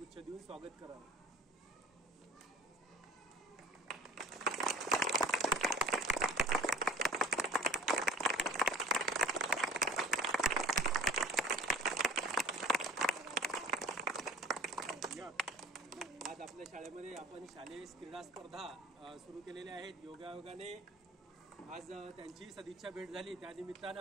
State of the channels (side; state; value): both; normal; correlation 0.44